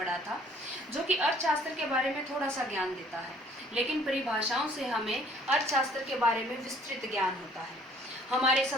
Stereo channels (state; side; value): normal; both; correlation 0.57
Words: था, जो कि अर्थशास्त्र के बारे में थोड़ा सा ज्ञान देता है, लेकिन परिभाषाओं से हमें अर्थशास्त्र के बारे में विस्तृत ज्ञान होता है। हमारे